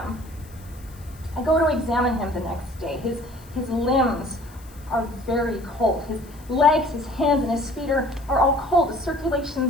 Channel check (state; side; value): noise; left; hiss, 25 dB below the sound